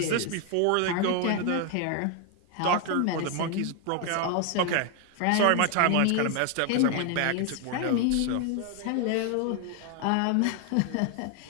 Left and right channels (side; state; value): both; different; correlation 0.00